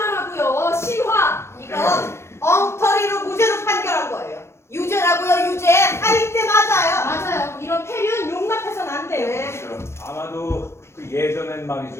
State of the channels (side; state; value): right; late; 0.13 ms